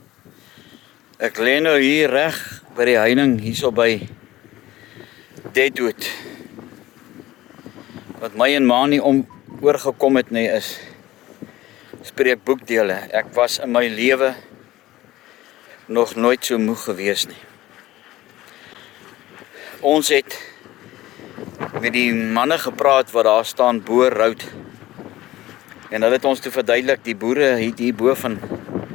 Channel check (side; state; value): right; quieter; 16.3 dB